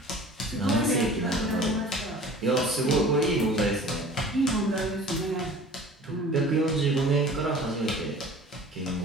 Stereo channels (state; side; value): normal; both; correlation 0.44